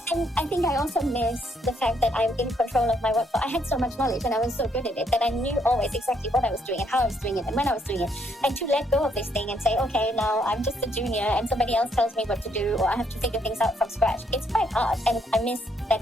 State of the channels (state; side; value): normal; both; correlation 0.72